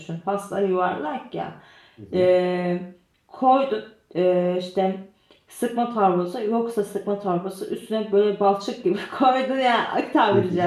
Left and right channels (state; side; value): identical; both; correlation 1.00